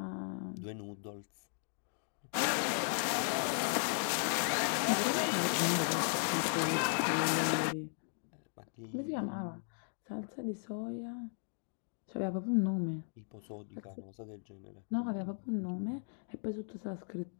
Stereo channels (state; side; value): silent; right; digital silence